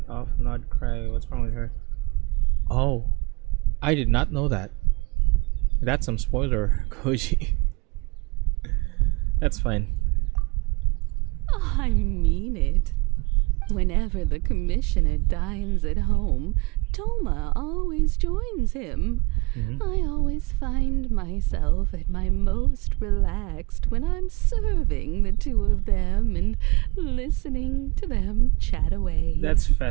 off Nod Cry. What's wrong with her? Oh, I did not know that. That's some spoiler, Koji. That's fine. I mean it. Whenever the commissioner dines at home, Toma always joins him. I always find myself at my most relaxed when I'm serving the two of them and listening to them chat away. That's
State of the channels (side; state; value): left; quieter; 26.5 dB